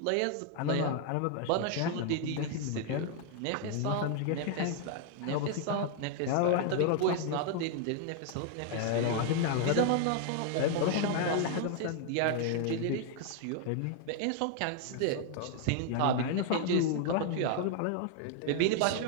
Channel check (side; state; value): both; different; correlation 0.00